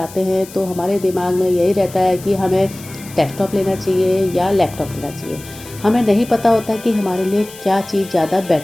हैं तो हमारे दिमाग में यही रहता है कि हमें डेस्कटॉप लेना चाहिए या लैपटॉप लेना चाहिए। हमें नहीं पता होता कि हमारे लिए क्या चीज़ ज़्यादा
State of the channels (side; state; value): left; noise; hiss, 18 dB below the sound